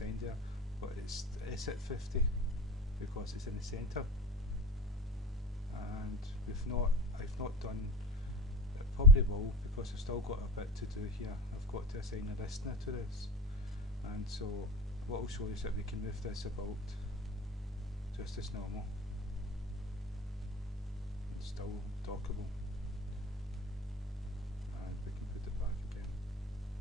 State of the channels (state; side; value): normal; both; correlation 0.33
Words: there, but it's at 50 because it's in the centre, and I've not done it. Probably will, because I've still got a bit to do here. I've got to assign a listener to this, and so what I'll show you is that we can move this about just as normal. It's still dockable, and we can put it back again.